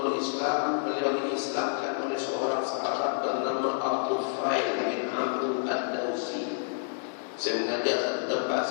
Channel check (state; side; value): silent; right; 59 dB below the other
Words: Islam, beliau diislamkan oleh seorang sahabat bernama Al-Tufail bin Amr ad-Dawsi. Saya mengajar satu tempat,